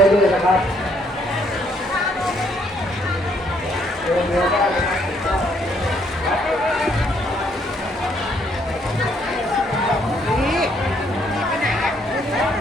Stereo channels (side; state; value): both; normal; correlation 0.69